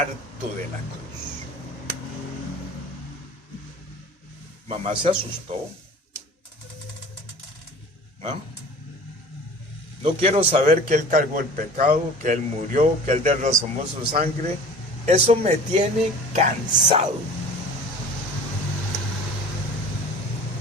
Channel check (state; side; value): normal; both; correlation 0.42